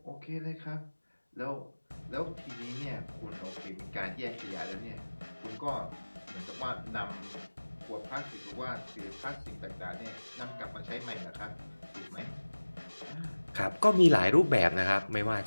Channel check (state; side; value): inverted; both; correlation -1.00